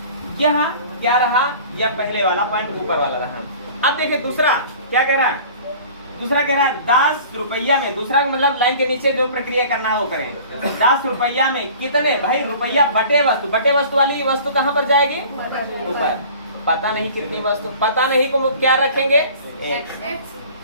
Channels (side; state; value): both; inverted; correlation -0.45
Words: यहाँ क्या रहा? या पहले वाला पॉइंट ऊपर वाला रहा। अब देखिए दूसरा क्या कह रहा है? दूसरा कह रहा है 10 रुपया में, दूसरा मतलब लाइन के नीचे जो प्रक्रिया करना है वो करें। 10 रुपया में कितने, भाई रुपया बटे वस्तु, बटे वस्तु वाली वस्तु कहाँ पर जाएगी, ऊपर। पता नहीं कितनी वस्तु, पता नहीं को क्या रखेंगे, एक।